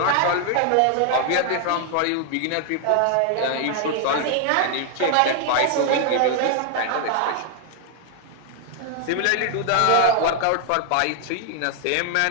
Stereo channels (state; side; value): different; both; correlation 0.00